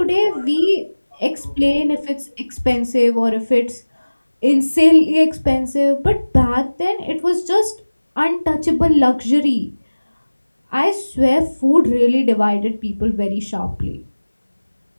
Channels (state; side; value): inverted; both; correlation -1.00